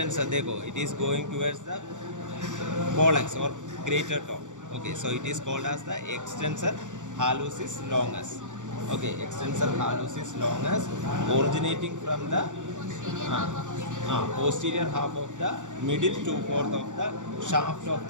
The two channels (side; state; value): left; late; 0.86 ms